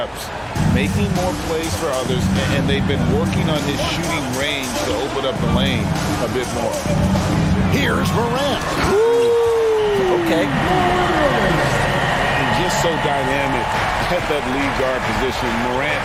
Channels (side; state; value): both; identical; correlation 1.00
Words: making more plays for others, and they've been working on his shooting range to open up the lane a bit more. Here's Morant. Okay. And just so dynamic at that lead guard position. Morant